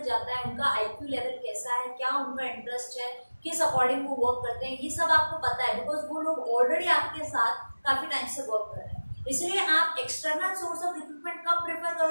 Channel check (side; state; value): both; inverted; correlation -1.00